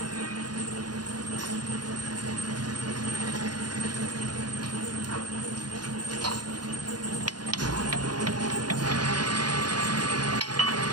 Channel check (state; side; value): late; left; 0.70 ms